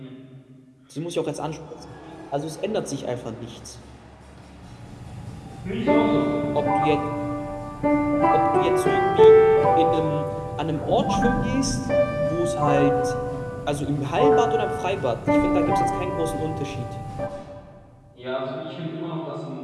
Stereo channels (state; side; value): identical; both; correlation 1.00